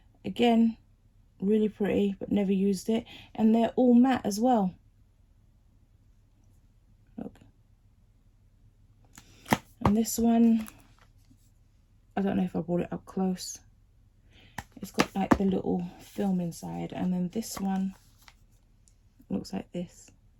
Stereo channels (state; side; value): identical; both; correlation 1.00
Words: Again, really pretty, but never used it. And they're all matte as well. Look. And this one, I don't know if I brought it up close. It's got like the little film inside. And then this one looks like this.